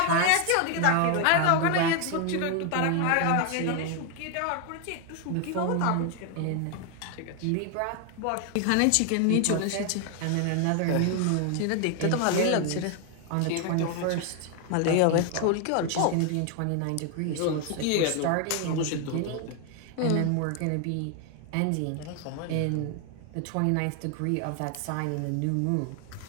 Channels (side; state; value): both; different; correlation 0.00